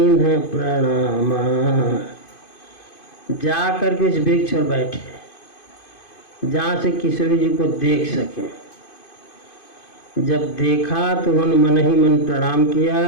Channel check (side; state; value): right; late; 2.5 ms